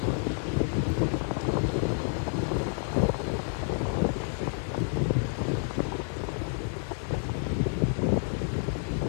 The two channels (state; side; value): silent; right; 58 dB below the other